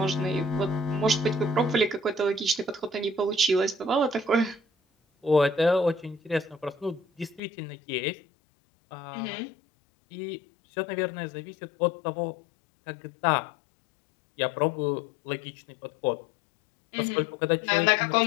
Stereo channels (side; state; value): right; drops out; at 7.4 s